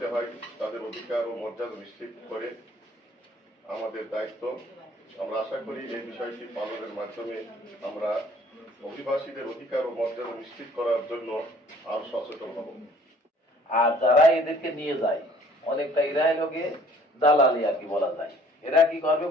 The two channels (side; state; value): both; normal; correlation 0.56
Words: হয়, তাদের অধিকার ও মর্যাদা নিশ্চিত করে আমাদের দায়িত্ব। আমরা আশা করি এই বিষয়টি পালনের মাধ্যমে আমরা অভিবাসীদের অধিকার ও মর্যাদা নিশ্চিত করার জন্য আরো সচেতন হব। আর যারা এদেরকে নিয়ে যায় অনেকটা এরাই লোকে দালালি আর কি বলা যায়। এরা কি করবে,